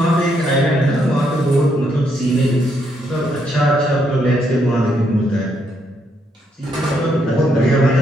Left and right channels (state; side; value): normal; both; correlation 0.75